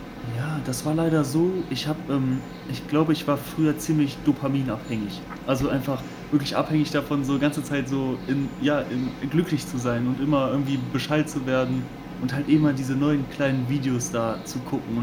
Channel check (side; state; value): both; identical; correlation 1.00